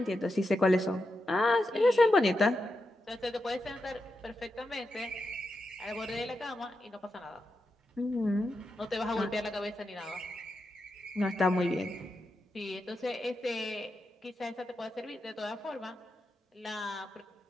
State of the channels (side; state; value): both; normal; correlation 0.87